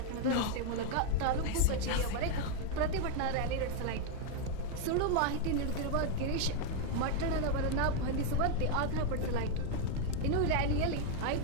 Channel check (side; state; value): both; different; correlation 0.00